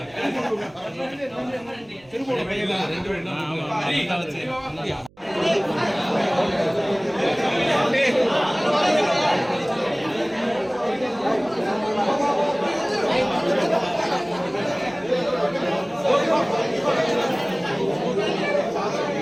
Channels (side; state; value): right; noise; hum, 29 dB below the sound